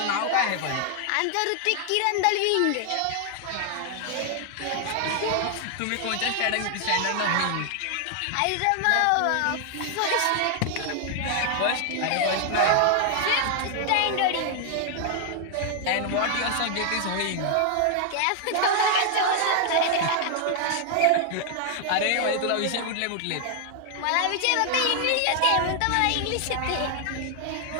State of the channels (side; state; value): both; different; correlation 0.00